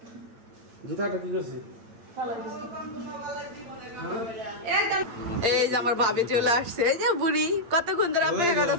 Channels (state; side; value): late; left; 8.8 ms